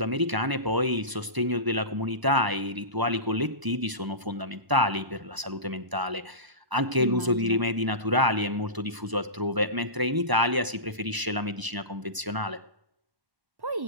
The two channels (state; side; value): late; left; 1.0 ms